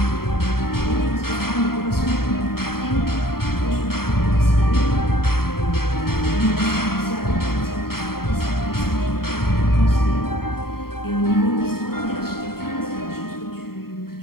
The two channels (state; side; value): late; right; 0.93 ms